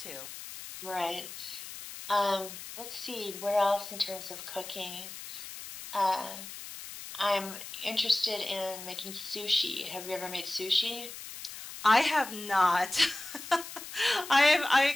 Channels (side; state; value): left; noise; hiss, 11 dB below the sound